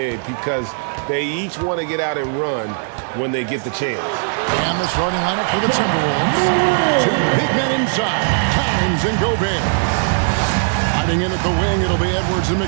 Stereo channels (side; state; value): left; silent; digital silence